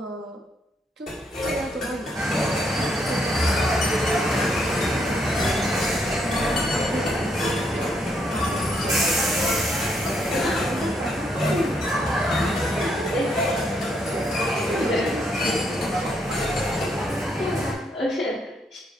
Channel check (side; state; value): both; normal; correlation 0.74